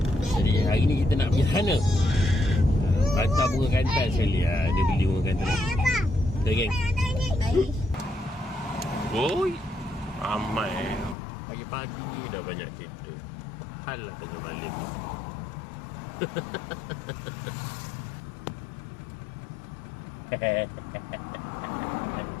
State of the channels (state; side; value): drops out; right; at 11.2 s